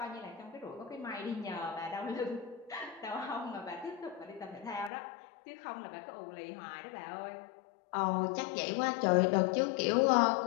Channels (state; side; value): drops out; right; at 4.9 s